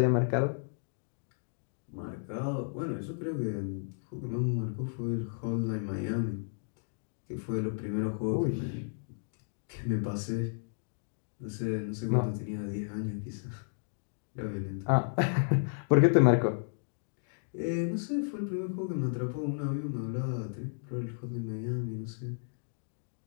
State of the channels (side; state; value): right; silent; digital silence